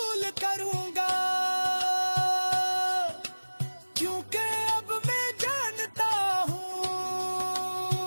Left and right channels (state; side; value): inverted; both; correlation -1.00